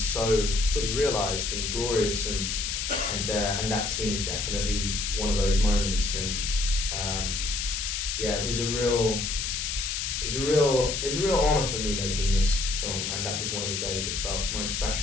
so fully realized and glorious, and that scene is definitely one of those moments. And it was a real honor for me making this film, and that was one of the days that felt most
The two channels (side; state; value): left; noise; hiss, 2 dB below the sound